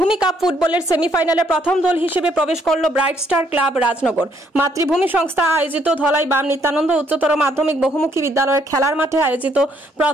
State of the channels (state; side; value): normal; both; correlation 0.69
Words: কাপ ফুটবলের সেমিফাইনালে প্রথম দল হিসেবে প্রবেশ করল ব্রাইট স্টার ক্লাব রাজনগর। মাতৃভূমি সংস্থা আয়োজিত ধলাই বাম নিত্যানন্দ উচ্চতর মাধ্যমিক বহুমুখী বিদ্যালয়ের খেলার মাঠে আয়োজিত